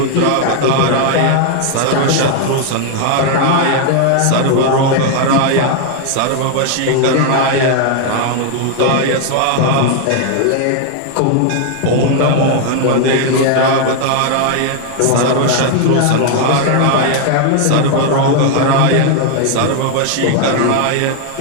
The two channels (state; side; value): different; both; correlation 0.00